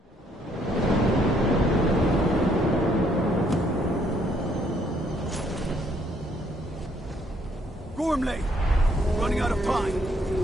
Gormley! Running out of time.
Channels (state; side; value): normal; both; correlation 0.68